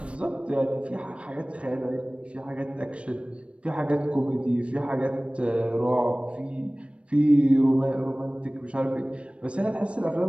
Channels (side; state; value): left; late; 0.060 ms